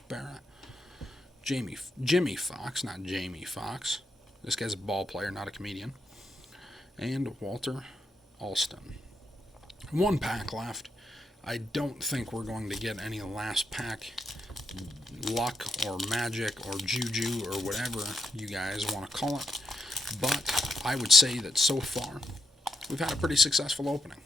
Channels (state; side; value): normal; both; correlation 0.82